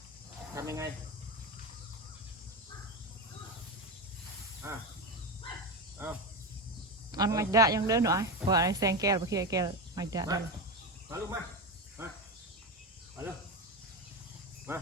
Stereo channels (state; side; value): normal; both; correlation 0.18